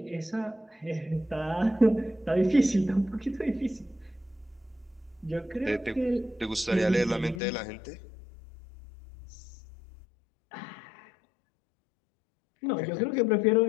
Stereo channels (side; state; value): right; drops out; at 7.4 s